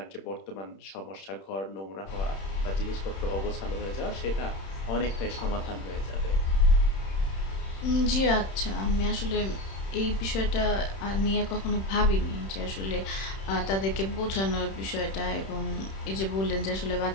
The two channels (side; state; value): right; late; 31 ms